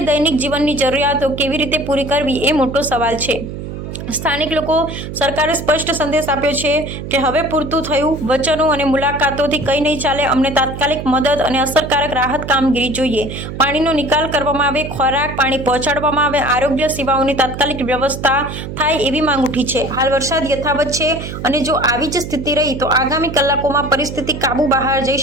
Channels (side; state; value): right; noise; hum, 8 dB below the sound